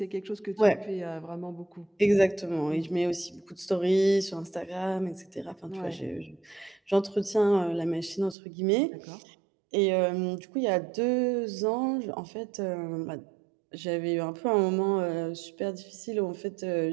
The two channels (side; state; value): left; drops out; at 8.3 s